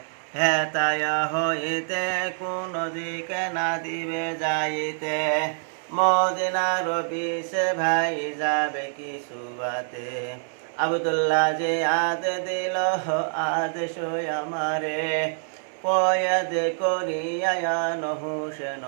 হেতায় হইতে কোন দিকে না দিবে যাইতে, মদিনার বিষে ভাই যাবে কিছু বাতে। আব্দুল্লাহ যে আদে দিল আদেশ আমারে, কয়াদ করিয়া হুসেন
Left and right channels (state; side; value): silent; left; 61 dB below the other